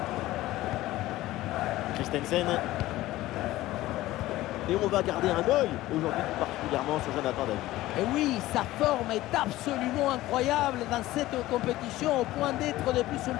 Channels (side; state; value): right; quieter; 16.6 dB